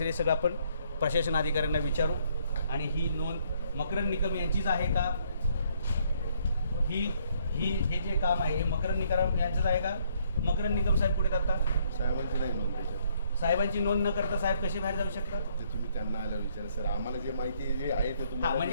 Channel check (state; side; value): inverted; both; correlation -0.68